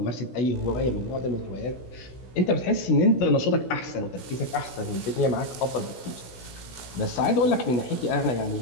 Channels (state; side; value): late; right; 16 ms